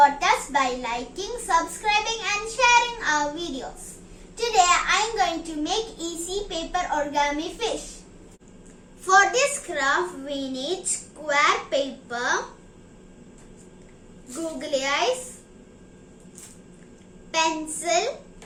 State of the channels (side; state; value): both; identical; correlation 1.00